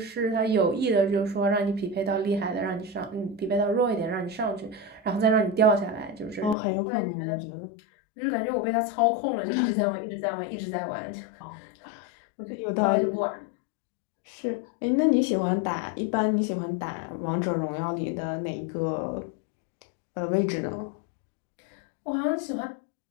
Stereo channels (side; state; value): right; drops out; at 6.6 s